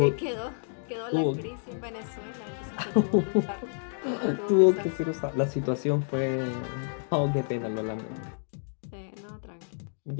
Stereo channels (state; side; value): silent; right; digital silence